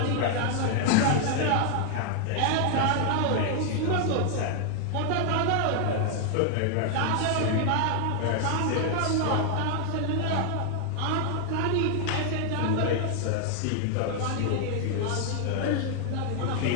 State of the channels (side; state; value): both; different; correlation 0.00